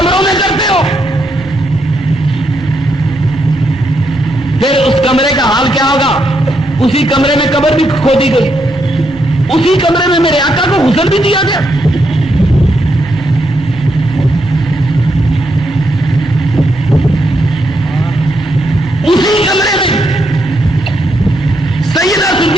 میں کرتے ہو؟ پھر اس کمرے کا حال کیا ہوگا؟ اسی کمرے میں قبر بھی کھودی گئی، اسی کمرے میں میرے آقا کو غسل بھی دیا گیا۔ اسی کمرے میں سیدہ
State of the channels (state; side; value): noise; right; rumble, 19 dB below the sound